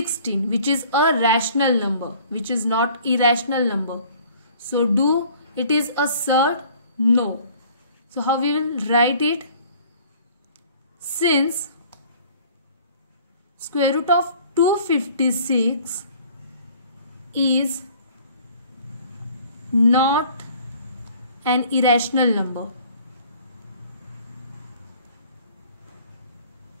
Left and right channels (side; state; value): both; inverted; correlation -0.53